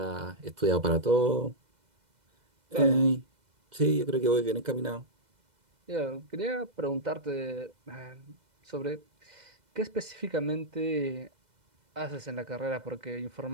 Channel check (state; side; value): late; left; 2.0 ms